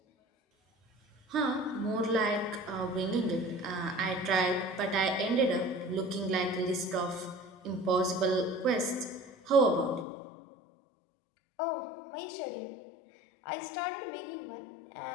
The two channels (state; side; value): drops out; right; at 10.1 s